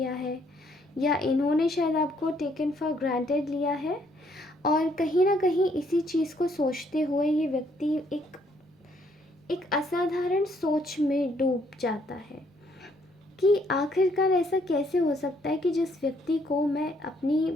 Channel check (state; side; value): normal; both; correlation 0.68